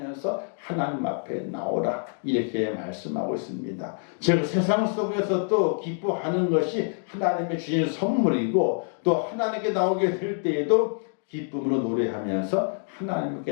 하나님 앞에 나오라 이렇게 말씀하고 있습니다. 즉 세상 속에서도 기뻐하는 것이 하나님의 주신 선물이고 또 하나님께 나오게 될 때에도 기쁨으로 노래하면서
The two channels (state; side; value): silent; right; 61 dB below the other